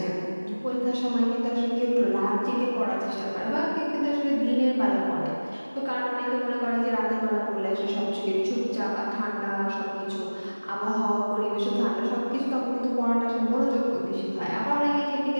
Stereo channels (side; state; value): both; inverted; correlation -1.00